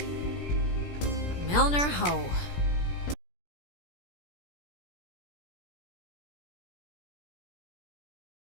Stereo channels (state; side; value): late; right; 17 ms